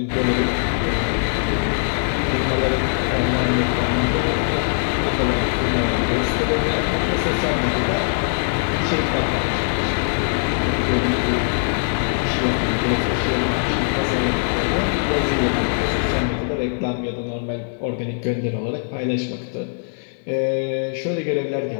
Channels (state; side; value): silent; right; digital silence